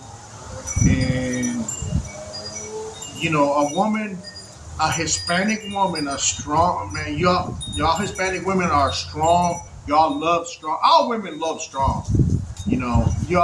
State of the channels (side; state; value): both; identical; correlation 1.00